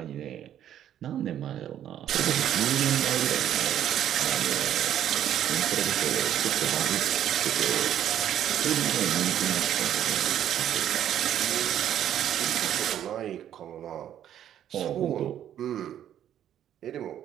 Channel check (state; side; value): quieter; left; 10.7 dB